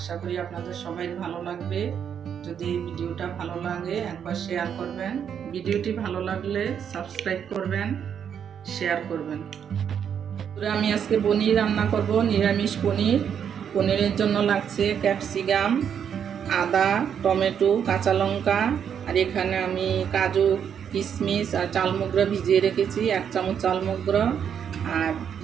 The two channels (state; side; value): quieter; left; 8.1 dB